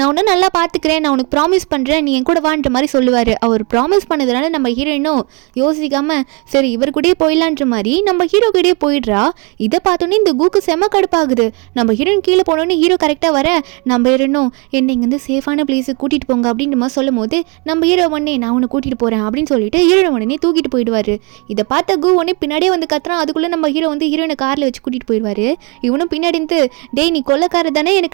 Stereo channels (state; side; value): quieter; left; 31.5 dB